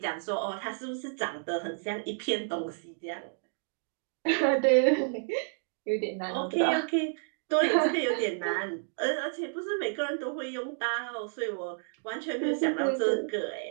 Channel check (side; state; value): left; silent; digital silence